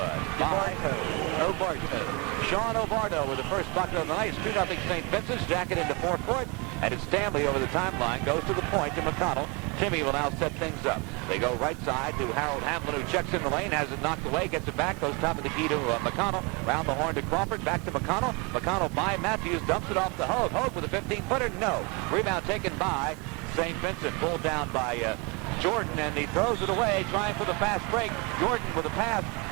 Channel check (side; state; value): left; quieter; 30.2 dB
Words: By Obarto. Sean Obarto with the first bucket of the night. 2-0 St. Vincent's. Jacket into forecourt. And it's Stanley over the timeline. Goes to the point to McConnell. Timmy will now set things up. They go right side to Harold Hamlin, who checks in the lane, has it knocked away, gets it back, goes top of the key to McConnell. Round the horn to Crawford, back to McConnell. McConnell by Matthews, dumps it off to Hogue. Hogue with a 15-footer, no. Rebound taken by St. Vincent, pulled down by Jordan, and he throws it away, trying for the fast break. Jordan with a pass